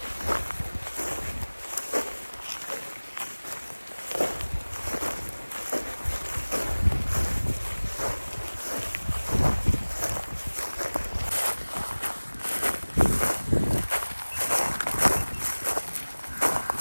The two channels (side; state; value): both; inverted; correlation -1.00